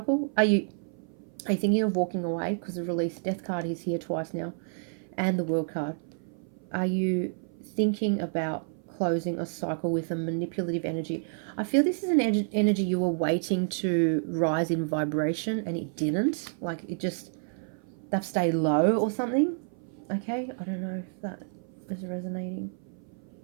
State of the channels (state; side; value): silent; left; 58 dB below the other